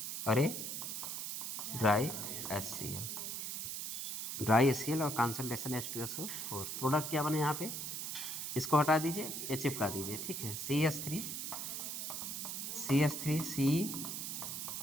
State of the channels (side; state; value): right; noise; hiss, 4 dB below the sound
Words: और ये ड्राई HCl, ड्राई HCl और कॉन्सेंट्रेशन H2SO4, प्रोडक्ट क्या बने यहाँ पे, इसको हटा दीजिए, ये चिपका दीजिए, ठीक है,